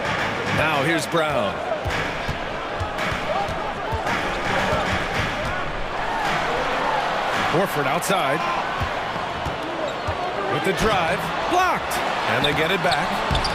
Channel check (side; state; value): both; identical; correlation 1.00